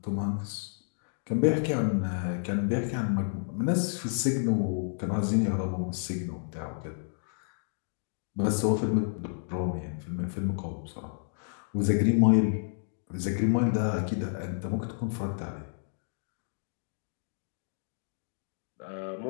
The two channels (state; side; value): silent; right; digital silence